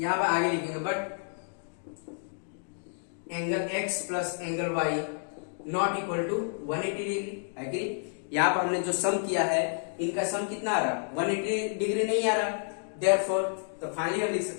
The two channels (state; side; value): silent; right; digital silence